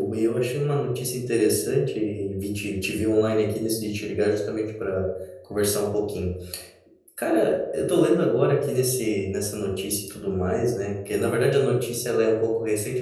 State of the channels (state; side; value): identical; both; correlation 1.00